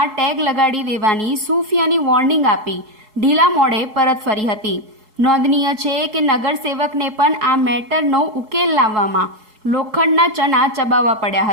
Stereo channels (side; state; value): left; late; 4.7 ms